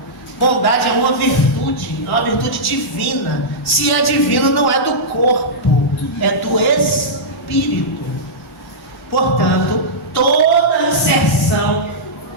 Bondade é uma virtude divina. Se é divina, não é do corpo, é do espírito. Portanto, toda inserção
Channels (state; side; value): normal; both; correlation -0.12